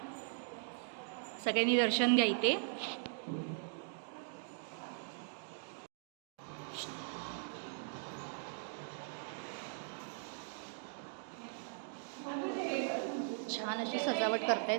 सगळ्यांनी दर्शन घ्या इथे. छान अशी सजावट करतायत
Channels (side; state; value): left; silent; digital silence